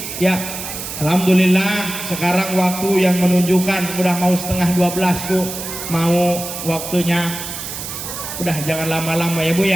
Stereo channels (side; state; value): right; noise; hiss, 8 dB below the sound